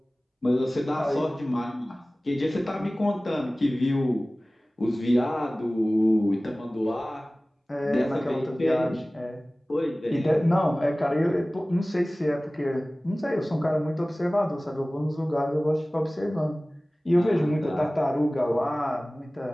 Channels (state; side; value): normal; both; correlation 0.98